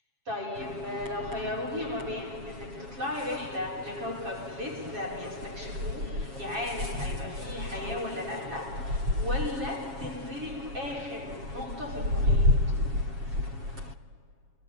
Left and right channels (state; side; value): late; left; 7.3 ms